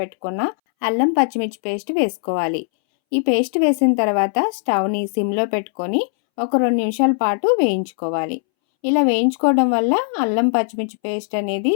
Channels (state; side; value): silent; right; 65 dB below the other